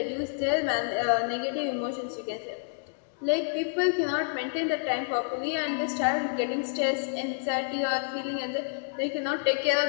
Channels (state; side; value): silent; right; digital silence